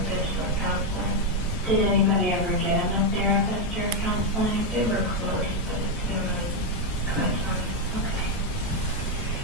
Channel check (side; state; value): both; normal; correlation 0.03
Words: or counseling. Did anybody ever get him a therapist or counseling? They were close, but it's been really kind of time. Okay.